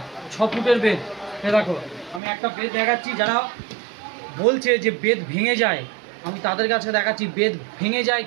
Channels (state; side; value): drops out; left; at 2.2 s